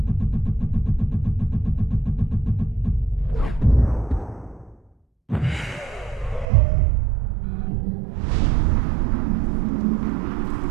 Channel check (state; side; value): drops out; left; at 6.5 s